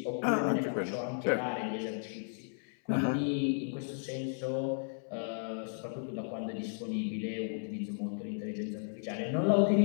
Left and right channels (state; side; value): silent; right; 55 dB below the other